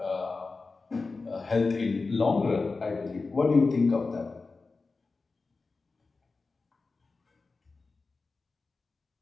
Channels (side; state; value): right; quieter; 4.0 dB